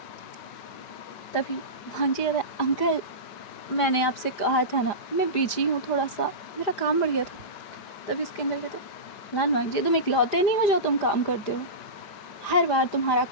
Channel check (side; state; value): right; late; 5.0 ms